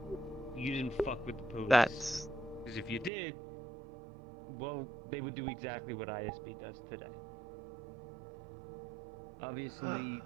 you didn't fuck with the police. That's Because if you did, well, they would do exactly what ISB does today. Obviously,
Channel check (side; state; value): left; drops out; at 3.1 s